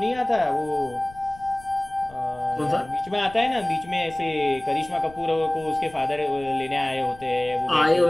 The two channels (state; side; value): noise; left; rumble, 21 dB below the sound